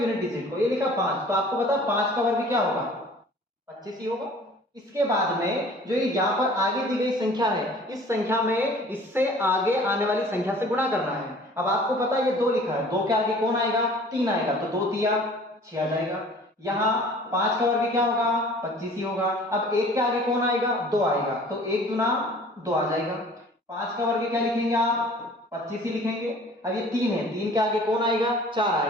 डिजिट को, ये लिखा 5, तो आपको पता 5 का वर्ग क्या होगा, 25 ही होगा। इसके बाद में जो ये यहाँ पर आगे दी गई संख्या है, इस संख्या में इससे आगे आने वाली संख्या से गुणा करना है। अब आपको पता है ये 2 लिखा है, 2 के आगे कौन आएगा, 3 आएगा, तो 2 तिया 6 आ जाएगा। यहाँ 5 का वर्ग क्या होगा, 25 ही होगा। अब 1 के आगे कौन आएगा, 2 आएगा, तो 1 दूना 2 आ जाएगा। 5 का वर्ग क्या लिखेंगे आप, 25 ही लिखेंगे। अब ये 3 है, 3 के आगे कौन आएगा, 4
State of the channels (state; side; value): normal; both; correlation 0.49